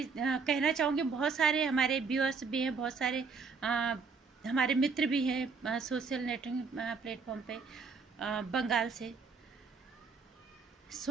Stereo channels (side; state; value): left; quieter; 5.0 dB